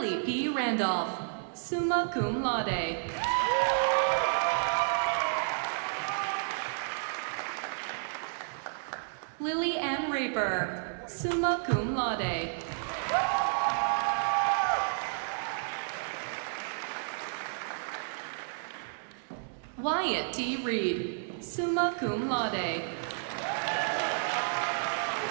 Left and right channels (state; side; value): silent; left; digital silence